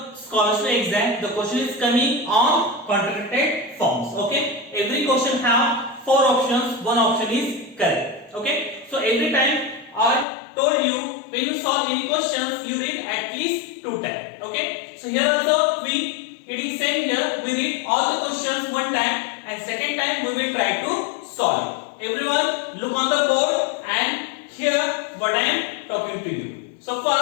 scholarship exam. The question is coming on contracted forms. Okay, every question have 4 options, one option is correct. Okay, so every time I told you when you solve any questions you read at least 2 times. Okay, so here also it is same here, we read all the questions one time and second time we will try to solve. Everyone look on the board and hear what I am talking to you. So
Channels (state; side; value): drops out; right; at 10.2 s